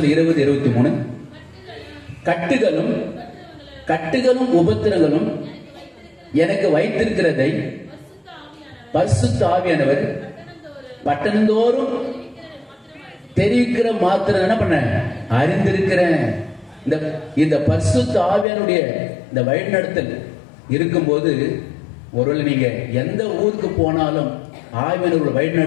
20:23 கட்டுகளும் உபத்திரங்களும் எனக்கு வைத்திருக்கிறதை பரிசுத்த ஆவியானவர் பட்டணந்தோறும் தெரிவிக்கிற மாத்திரம் என்ன பண்ண அறிந்திருக்கிறேன். இந்த பரிசுத்த ஆவியானுடைய இந்த வழிநடத்தல் இருக்கும்போது ஒருவேளை நீங்க எந்த ஊருக்கு போனாலும் ஆவியானவர் வழி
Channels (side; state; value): right; drops out; at 18.4 s